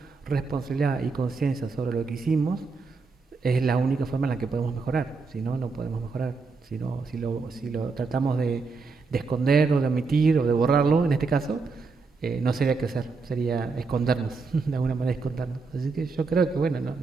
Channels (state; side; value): quieter; left; 4.4 dB